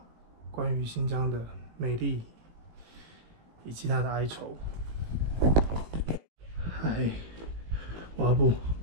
关于新疆的美丽以及它的哀愁。嗨，我阿布，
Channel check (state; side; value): late; left; 18 ms